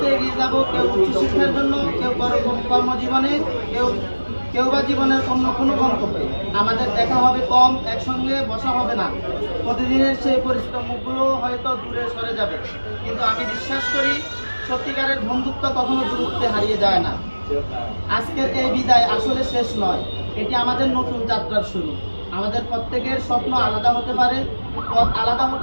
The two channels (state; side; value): inverted; both; correlation -1.00